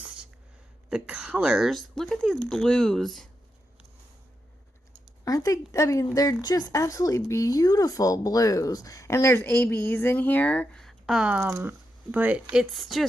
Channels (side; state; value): both; normal; correlation 0.86